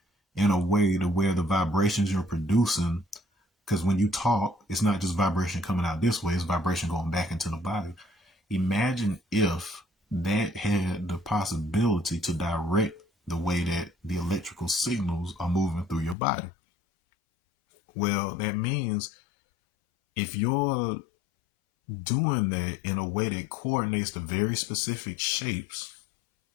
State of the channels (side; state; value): right; drops out; at 16.2 s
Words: in a way to where the vibrations you're producing, because when you talk, it's not just vibration coming out this way, it's vibration going back into the body. Imagine if that had the possibility to direct the way that the electrical signals are moving through your body. Well, that means if you're doing that in a way that coordinates the very specific shapes,